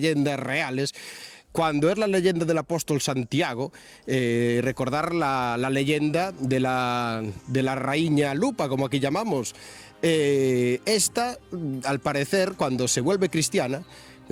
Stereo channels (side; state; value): both; identical; correlation 1.00